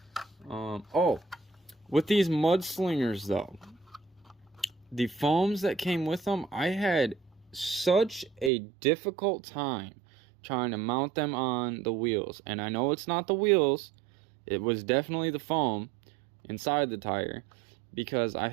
Oh, with these mudslingers though, the foams that came with them, I had such a difficult time trying to mount them on the wheels. And I know it's not the wheels, it was definitely the foam inside the tire, because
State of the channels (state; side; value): drops out; left; at 8.5 s